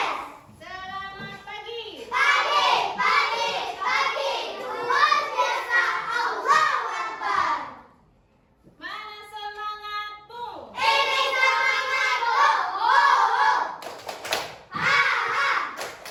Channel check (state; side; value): identical; both; correlation 1.00